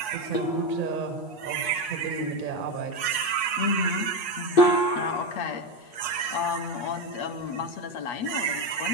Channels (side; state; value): right; late; 8.3 ms